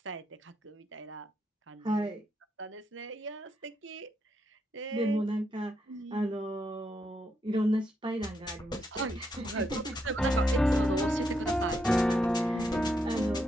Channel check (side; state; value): both; normal; correlation 0.80